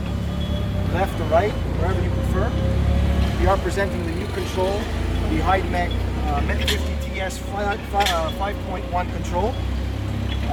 left or right, wherever you prefer. We are presenting the new control, the Hyd-Mech Met50TS 5.1 control.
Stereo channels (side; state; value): both; identical; correlation 1.00